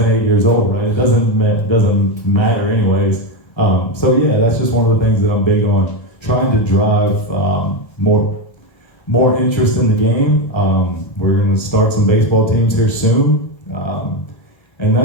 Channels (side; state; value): right; late; 1.3 ms